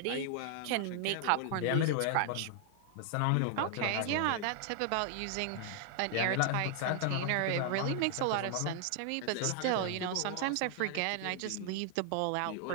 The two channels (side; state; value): both; different; correlation 0.00